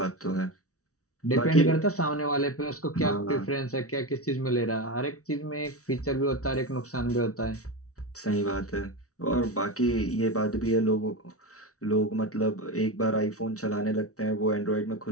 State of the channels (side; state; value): right; late; 0.65 ms